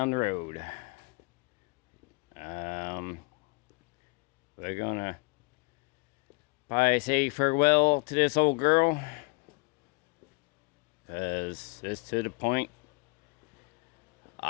the road. We're gonna probably say farewell to this old girl, because it's to the point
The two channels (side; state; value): right; quieter; 28.3 dB